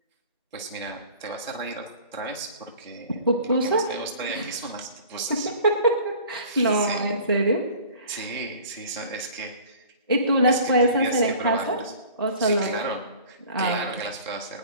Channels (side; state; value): both; inverted; correlation -0.45